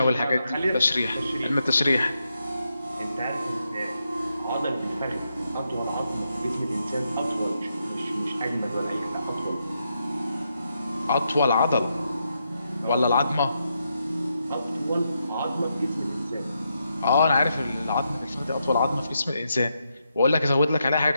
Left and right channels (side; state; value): both; inverted; correlation -0.83